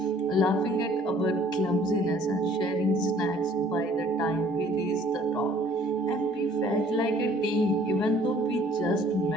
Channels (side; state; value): both; normal; correlation 0.57